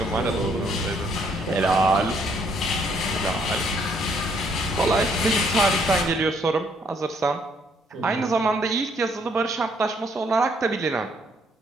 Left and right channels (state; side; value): normal; both; correlation 0.68